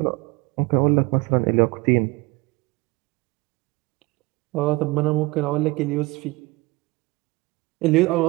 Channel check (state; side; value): quieter; left; 23.2 dB